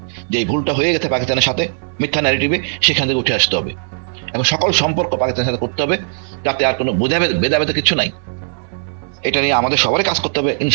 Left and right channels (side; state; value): left; silent; digital silence